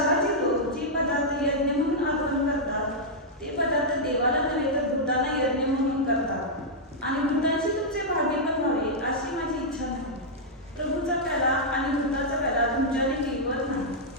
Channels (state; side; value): normal; both; correlation -0.07